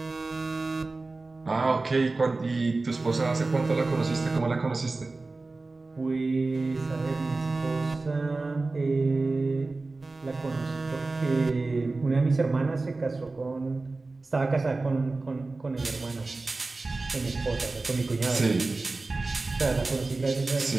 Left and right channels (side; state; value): left; quieter; 3.5 dB